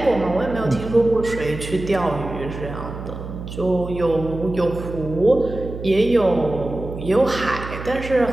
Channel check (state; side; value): noise; right; hum, 10 dB below the sound